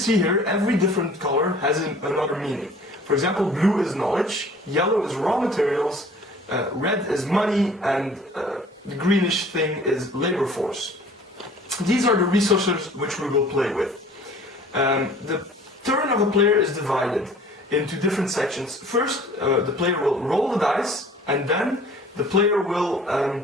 here, every different color has another meaning. For example, blue is knowledge, yellow is raw materials, red is money, and the greenish thing is labor force. These are the resources which we will play with. The turn of a player is divided into different sections. First, the player will roll the dice, and then the player will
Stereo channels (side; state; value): both; normal; correlation 0.50